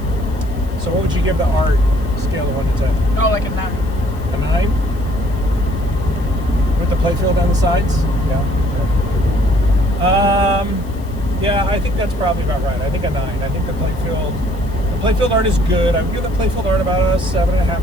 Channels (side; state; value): left; noise; hiss, 26 dB below the sound